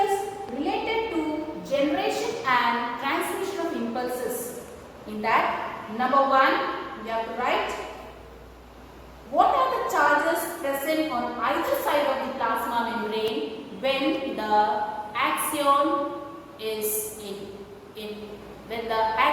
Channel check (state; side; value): identical; both; correlation 1.00